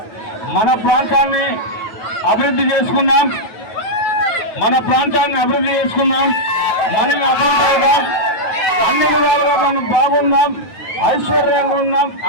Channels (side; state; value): right; late; 9.3 ms